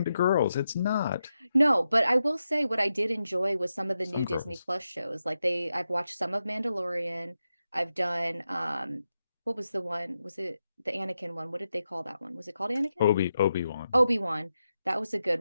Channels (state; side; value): inverted; both; correlation -0.88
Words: to girls. It's not. No, but I will say what I did enjoy was some of the Some new Disney girls. Plus shows. Like I've watched some of Mandalorian. I've done what was the one? Was it the Anakin one? What did they call that one? Was it called Anakin? Obi-Wan. Obi-Wan. That was a